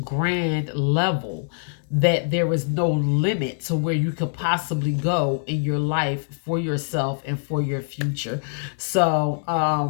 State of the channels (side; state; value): right; silent; 63 dB below the other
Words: level that there is no limit to where you could possibly go in your life for yourself and for your future. So